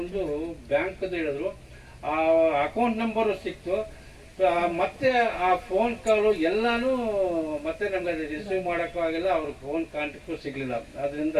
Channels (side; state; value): both; identical; correlation 1.00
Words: ಬ್ಯಾಂಕ್ದು ಹೇಳಿದ್ರು. ಆ ಅಕೌಂಟ್ ನಂಬರು ಸಿಕ್ತು. ಮತ್ತೆ ಆ ಫೋನ್ ಕಾಲು ಎಲ್ಲಾನು ಮತ್ತೆ ನಮ್ಗೆ ಅದು ರಿಸೀವ್ ಮಾಡೋಕ್ಕೂ ಆಗಿಲ್ಲ, ಅವ್ರ ಫೋನ್ ಕಾಂಟ್ಯಾಕ್ಟು ಸಿಗಲಿಲ್ಲ. ಅದರಿಂದ